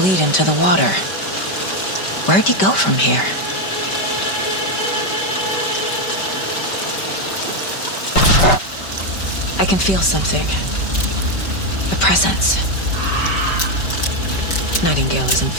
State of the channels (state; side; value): late; right; 5.2 ms